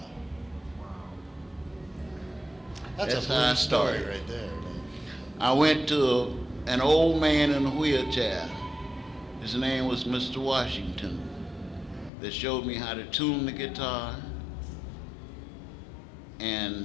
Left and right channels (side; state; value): right; drops out; at 12.1 s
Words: That's a how I blue story started. right there, man. I went to an old man in a wheelchair. His name was Mr. Washington, that showed me how to tune the guitar